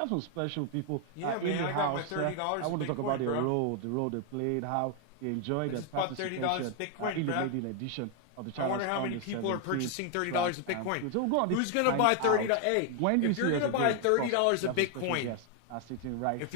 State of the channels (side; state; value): both; different; correlation 0.00